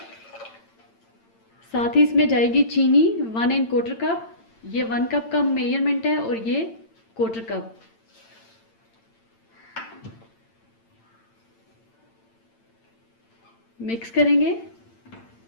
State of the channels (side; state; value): right; late; 8.8 ms